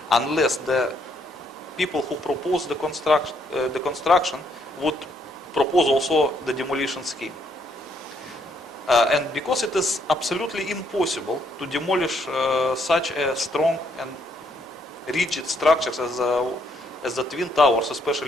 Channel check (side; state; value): both; normal; correlation 0.71